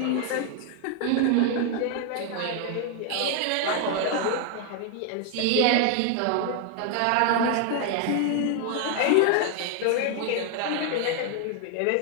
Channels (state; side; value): different; both; correlation 0.00